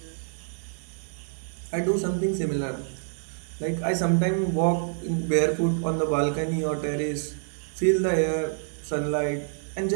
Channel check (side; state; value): left; silent; digital silence